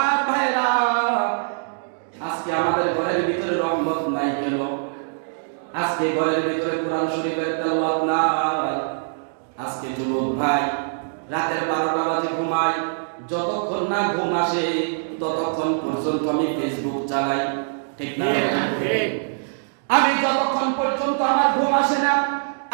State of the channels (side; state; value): left; silent; digital silence